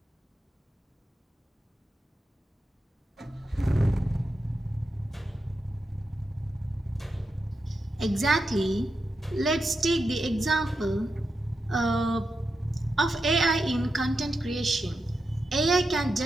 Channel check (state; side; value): normal; both; correlation 0.87